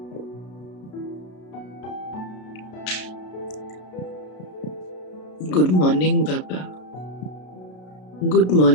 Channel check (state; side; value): late; right; 33 ms